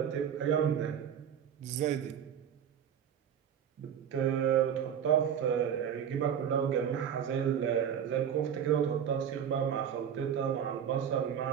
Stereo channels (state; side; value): quieter; left; 8.6 dB